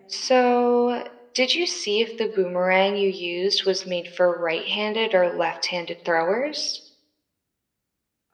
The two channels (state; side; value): identical; both; correlation 1.00